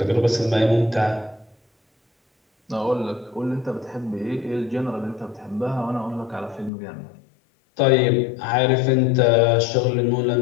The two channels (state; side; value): drops out; right; at 6.7 s